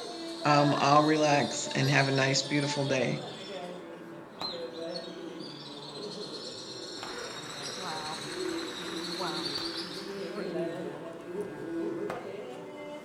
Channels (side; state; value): both; identical; correlation 1.00